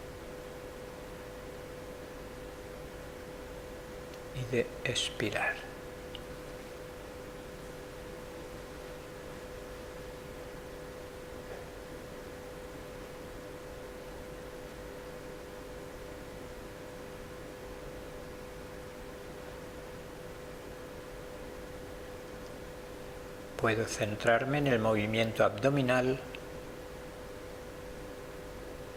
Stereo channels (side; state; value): both; identical; correlation 1.00